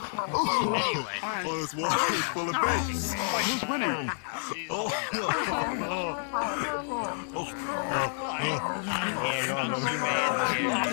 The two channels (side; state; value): right; silent; digital silence